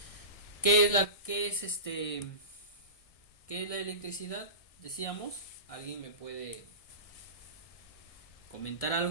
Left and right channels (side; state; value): right; late; 1.6 ms